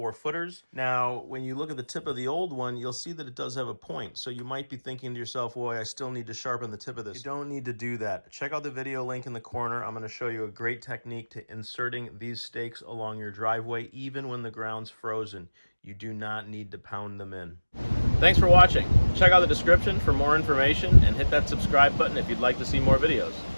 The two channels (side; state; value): both; inverted; correlation -1.00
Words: Now, when you look at the tip of the old one, you'll see that it does have a point. So you might be thinking to yourself, boy, I still need to sharpen the tip of this. You don't need to do that. Check out the video link in the corner. I'm going to show you a great technique to inserting these stakes along your driveway, even when the ground's frozen. You do not need to pound them in. Thanks for watching. Check out the description for more information and hit that subscribe button if you'd like to see more videos.